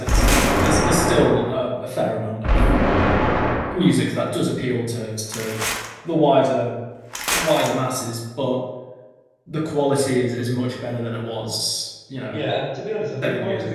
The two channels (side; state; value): both; identical; correlation 1.00